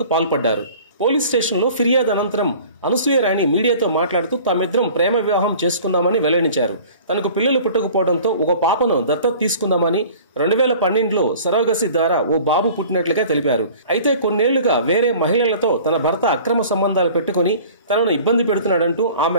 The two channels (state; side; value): inverted; both; correlation -0.46